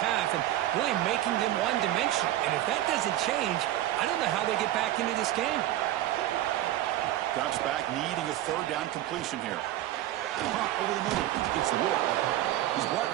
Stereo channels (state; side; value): quieter; left; 13.9 dB